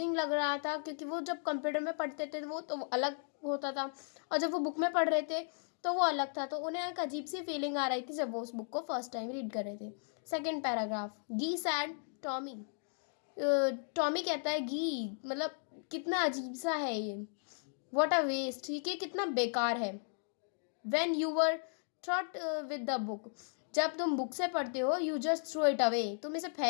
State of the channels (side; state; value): right; silent; digital silence